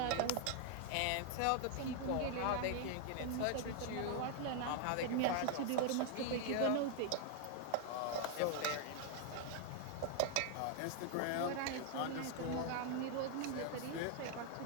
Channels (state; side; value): different; both; correlation 0.00